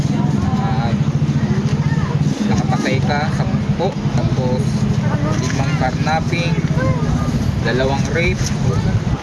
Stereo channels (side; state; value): both; identical; correlation 1.00